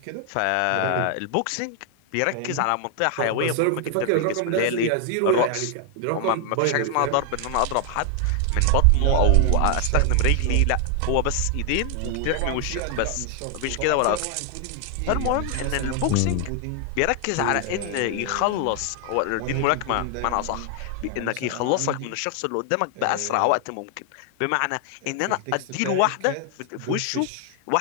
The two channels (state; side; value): different; both; correlation 0.00